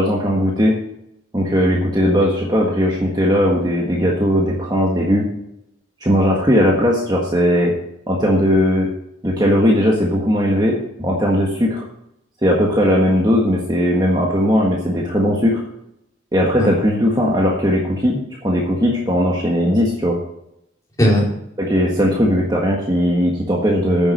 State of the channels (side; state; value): both; normal; correlation 0.65